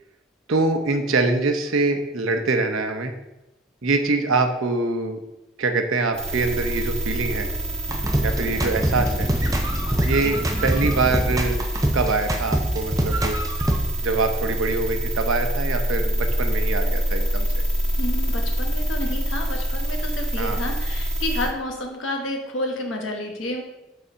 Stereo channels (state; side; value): normal; both; correlation 0.50